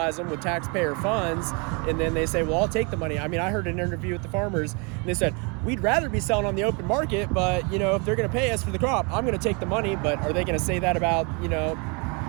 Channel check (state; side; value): quieter; left; 32.8 dB